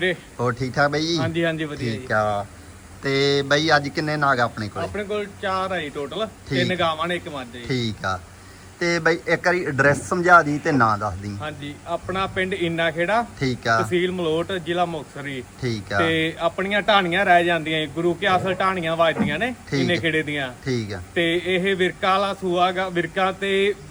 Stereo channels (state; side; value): identical; both; correlation 1.00